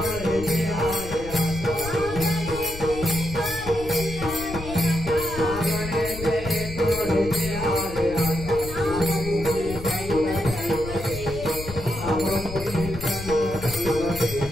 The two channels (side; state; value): left; noise; rumble, 11 dB below the sound